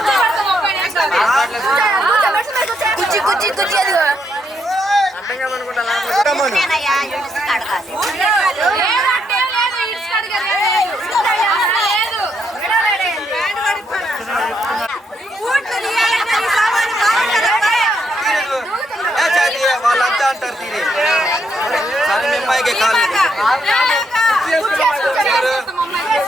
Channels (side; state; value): both; normal; correlation 0.76